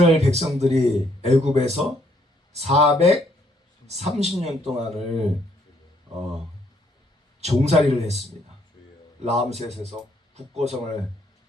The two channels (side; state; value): both; normal; correlation 0.69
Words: 백성들이 애굽에서 430년 동안을 종살이를 했습니다. 라암셋에서 북고성을